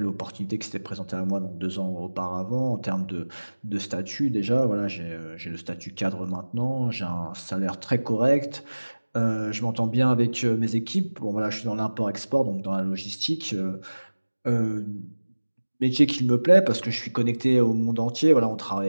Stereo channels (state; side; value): inverted; both; correlation -1.00